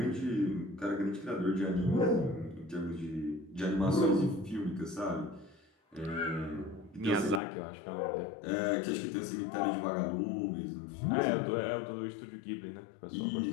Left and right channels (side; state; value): right; drops out; at 7.4 s